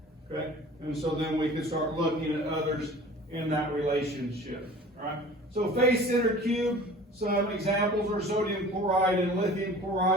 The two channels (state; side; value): normal; both; correlation 0.44